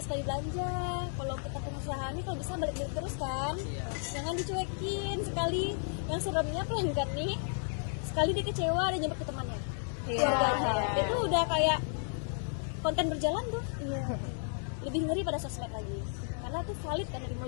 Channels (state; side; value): silent; right; 56 dB below the other